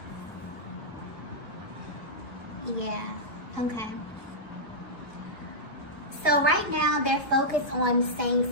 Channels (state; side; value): late; right; 1.9 ms